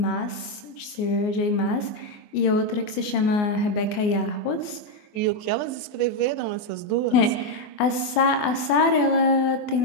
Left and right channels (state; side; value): late; right; 24 ms